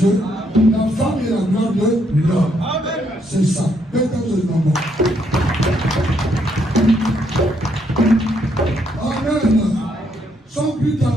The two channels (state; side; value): normal; both; correlation 0.73